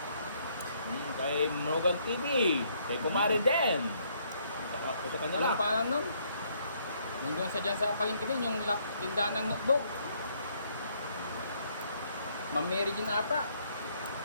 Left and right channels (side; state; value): both; inverted; correlation -0.69